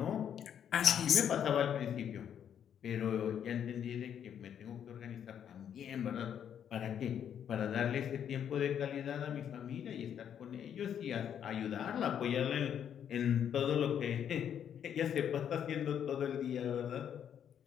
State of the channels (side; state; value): right; quieter; 8.9 dB